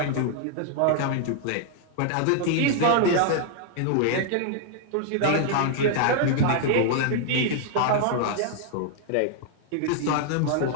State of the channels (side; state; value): both; different; correlation 0.00